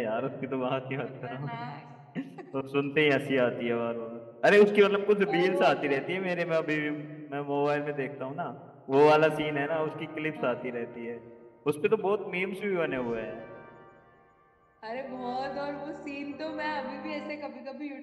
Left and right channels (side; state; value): both; identical; correlation 1.00